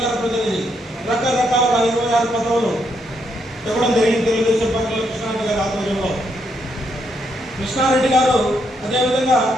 ప్రతినిధి, రకరకాల 26 పదవులు ఇవ్వడం జరిగింది తెలుగుదేశం పార్టీలో కృష్ణారెడ్డి గారి ఆధ్వర్యంలో. కృష్ణారెడ్డి గారు అదేవిధంగా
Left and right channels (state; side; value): normal; both; correlation 0.77